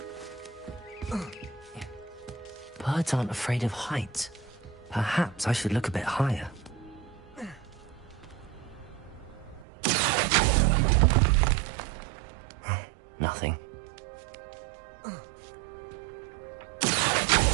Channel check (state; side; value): drops out; left; at 9.7 s